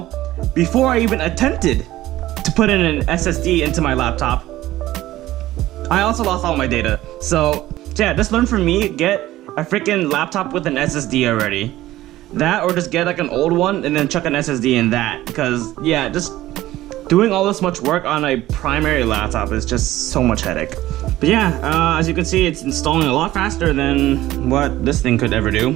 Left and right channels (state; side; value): quieter; left; 15.5 dB